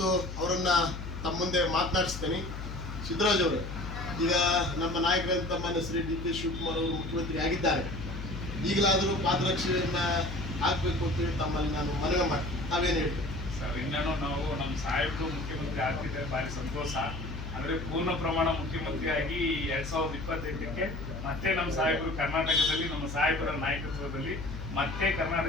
ಅವರನ್ನು ತಮ್ಮ ಮುಂದೆ ಮಾತನಾಡಿಸ್ತೇನೆ. ಸಿದ್ದರಾಜ್ ಅವರು, ಈಗ ನಮ್ಮ ನಾಯಕರಂತ ಮಾನ್ಯ ಶ್ರೀ ಡಿ ಕೆ ಶಿವಕುಮಾರ್ ಅವರು ಮುಖ್ಯಮಂತ್ರಿ ಆಗಿದ್ದಾರೆ. ಈಗಲಾದರೂ ಪಾದರಕ್ಷೆಯನ್ನು ಹಾಕಬೇಕು ಅಂತೇಳಿ ತಮ್ಮಲ್ಲಿ ನಾನು ಮನವಿ ಮಾಡ್ತೀನಿ. ತಾವೇನು ಹೇಳ್ತೀವಿ ಸರ್? ಇನ್ನೇನು ನಾವು ನಮ್ಮ ಸಾಹೇಬರು ಮುಖ್ಯಮಂತ್ರಿ ಆಗ್ತಿದ್ದಾರೆ, ಭಾರಿ ಸಂತೋಷ. ಅಂದರೆ ಪೂರ್ಣ ಪ್ರಮಾಣ ಮುಖ್ಯಮಂತ್ರಿಯಾಗಿ 2028ಕ್ಕೆ ಮತ್ತೆ ನಮ್ಮ ಸಾಹೇಬರು ಕರ್ನಾಟಕದಲ್ಲಿ, ನಮ್ಮ ಸಾಹೇಬರ ನಾಯಕತ್ವದಲ್ಲಿ ಮತ್ತೆ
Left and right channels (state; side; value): noise; left; hum, 8 dB below the sound